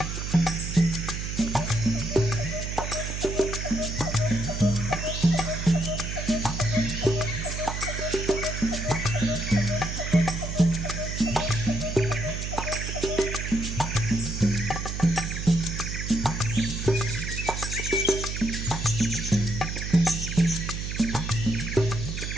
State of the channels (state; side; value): noise; right; hum, 4 dB below the sound